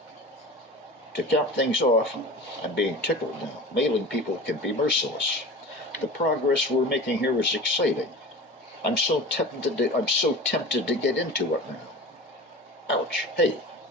To cap things off, I'm being tickled now. Mailing people can be merciless. The progress we're making here is exciting. I'm so tempted to get into it now. Ouch. Hey,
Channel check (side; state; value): both; normal; correlation 0.36